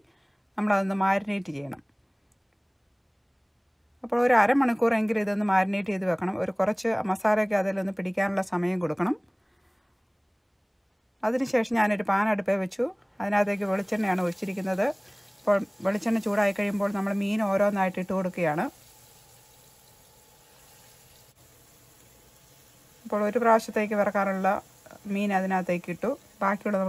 നമ്മളതൊന്ന് മാരിനേറ്റ് ചെയ്യണം. അപ്പോൾ ഒരു അരമണിക്കൂറെങ്കിലും ഇതൊന്ന് മാരിനേറ്റ് ചെയ്ത് വെക്കണം. ഒരു കുറച്ച് മസാലയൊക്കെ അതിലൊന്ന് പിടിക്കാനുള്ള സമയം കൊടുക്കണം. അതിനുശേഷം ഞാനൊരു പാൻ അടുപ്പേ വെച്ചു. അതിനകത്തേക്ക് വെളിച്ചെണ്ണയാണ് ഒഴിച്ചിരിക്കുന്നത്. അപ്പോൾ വെളിച്ചെണ്ണ ചൂടായി കഴിയുമ്പോൾ നമ്മൾ മീൻ ഓരോന്നായിട്ട് ഇട്ട് കൊടുക്കുകയാണ്. അപ്പോൾ ഒരു പ്രാവശ്യത്തേക്ക് വറക്കാനുള്ള മീൻ അതിനകത്തേക്ക് ഇട്ടു. ബാക്കിയുള്ള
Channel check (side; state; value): both; identical; correlation 1.00